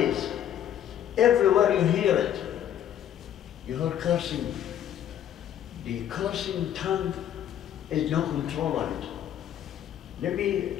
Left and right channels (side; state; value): right; quieter; 10.5 dB